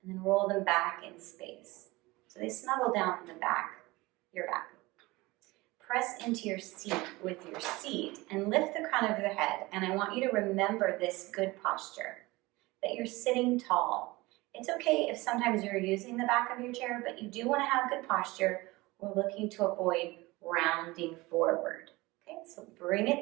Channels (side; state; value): left; quieter; 21.6 dB